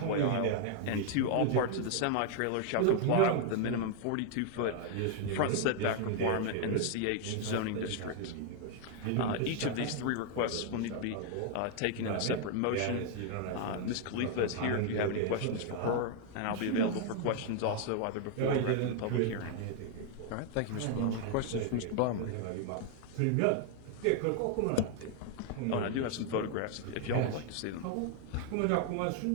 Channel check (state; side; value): different; both; correlation 0.00